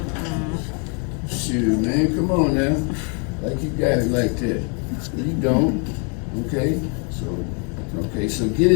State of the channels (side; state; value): right; quieter; 38.0 dB